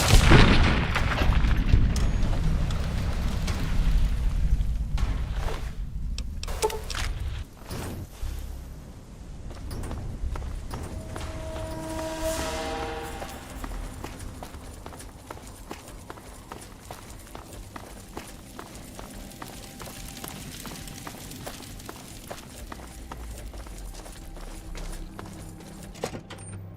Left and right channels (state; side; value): identical; both; correlation 1.00